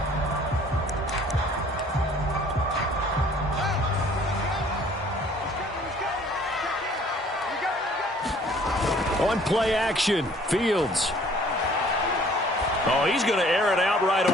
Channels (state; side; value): normal; both; correlation 0.55